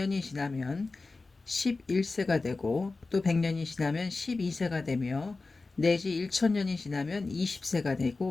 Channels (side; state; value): right; quieter; 3.7 dB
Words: 지나면 11세가 되고 또 100년이 지나면 12세가 되며 내지 1000년이 지나면 20세가